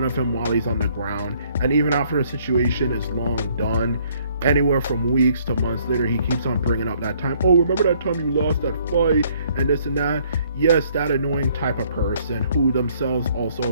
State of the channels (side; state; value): both; inverted; correlation -0.64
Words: of him while he's on the ground, and even after the situation is long done, anywhere from weeks to months later, he keeps on bringing up that time. Oh, remember that time you lost that fight and this and that? Yes, that annoying type of person who themselves